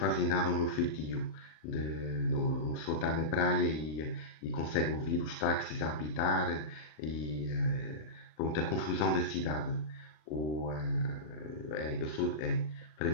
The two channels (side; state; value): right; late; 39 ms